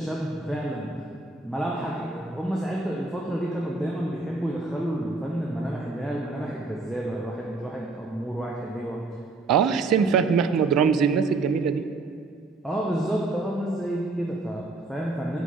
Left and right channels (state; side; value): quieter; left; 3.6 dB